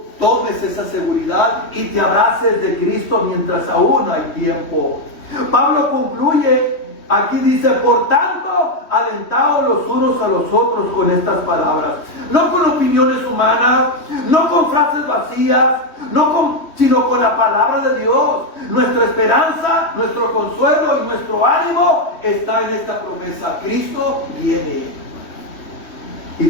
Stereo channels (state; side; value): late; right; 3.1 ms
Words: tomes esa seguridad y te abraces de Cristo mientras aún hay tiempo. Pablo concluye, aquí dice: por tanto, alentaos los unos a los otros con estas palabras. No con opiniones humanas, no con frases vacías, sino con la palabra de Dios. Nuestra esperanza, nuestro consuelo y nuestro ánimo está en esta promesa: Cristo viene. Y